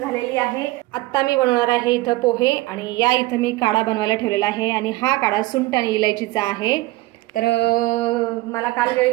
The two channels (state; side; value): quieter; left; 19.6 dB